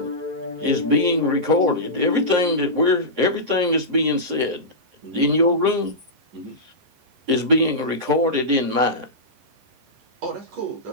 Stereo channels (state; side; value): late; left; 11 ms